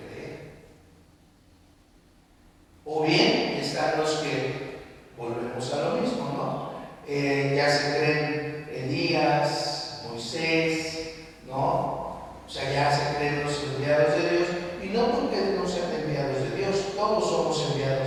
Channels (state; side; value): identical; both; correlation 1.00